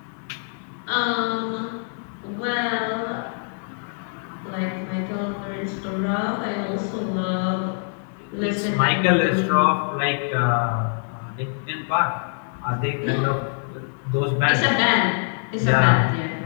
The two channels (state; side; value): silent; right; 63 dB below the other